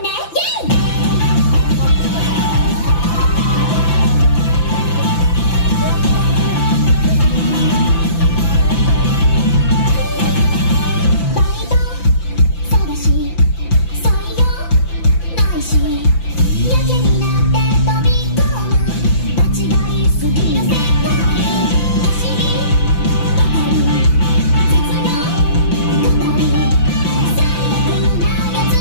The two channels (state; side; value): late; right; 5.9 ms